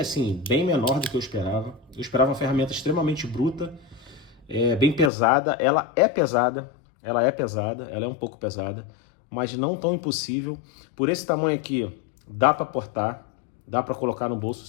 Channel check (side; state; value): right; drops out; at 5.1 s